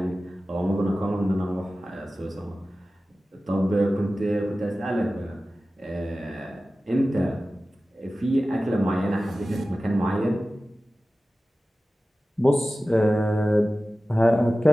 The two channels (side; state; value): both; normal; correlation 0.95